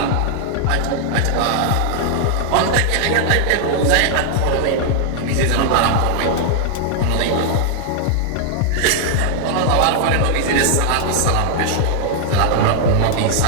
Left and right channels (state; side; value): different; both; correlation -0.01